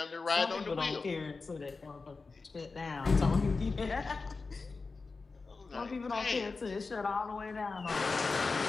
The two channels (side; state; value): right; quieter; 4.1 dB